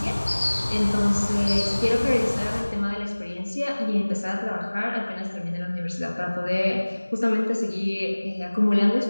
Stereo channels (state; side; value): inverted; both; correlation -1.00